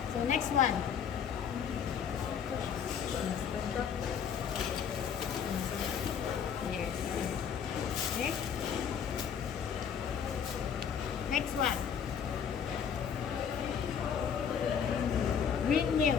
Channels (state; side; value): quieter; right; 7.5 dB